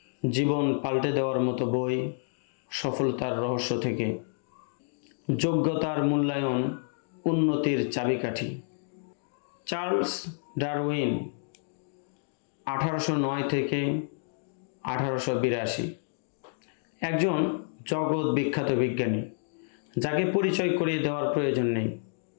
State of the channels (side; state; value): right; silent; digital silence